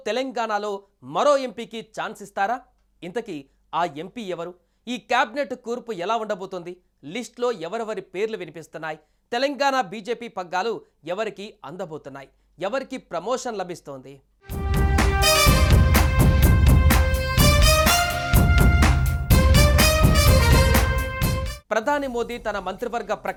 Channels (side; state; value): both; identical; correlation 1.00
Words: తెలంగాణలో మరో ఎంపీకి ఛాన్స్ ఇస్తారా? ఇంతకీ ఆ ఎంపీ ఎవరు? ఈ కేబినెట్ కూర్పు ఎలా ఉండబోతోంది? లిస్ట్లో ఎవరెవరి పేర్లు వినిపిస్తున్నాయి? తెలంగాణ బీజేపీ పగ్గాలు ఎవరికి అందబోతున్నాయి? ఎవరికి ప్రమోషన్ లభిస్తోంది? ప్రధాని మోదీ తన మంత్రివర్గ